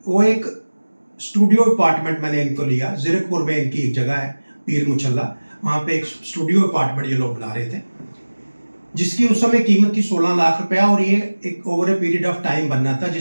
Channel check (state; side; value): inverted; both; correlation -1.00